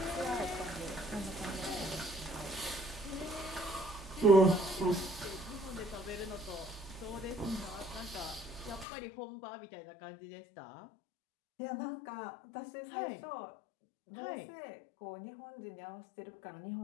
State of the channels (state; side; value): drops out; right; at 8.8 s